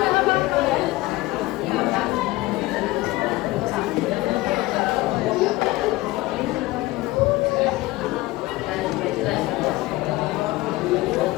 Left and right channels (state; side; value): quieter; right; 19.1 dB